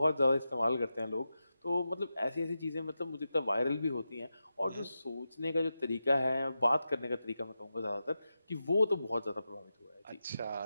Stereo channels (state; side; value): inverted; both; correlation -0.90